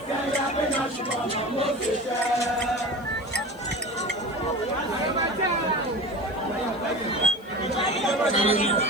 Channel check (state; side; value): noise; left; hiss, 27 dB below the sound